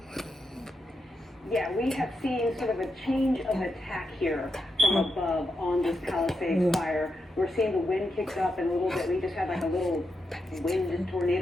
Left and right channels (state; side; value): normal; both; correlation 0.85